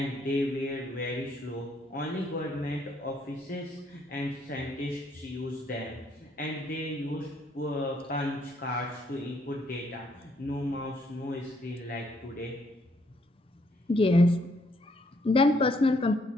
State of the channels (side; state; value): both; normal; correlation 0.69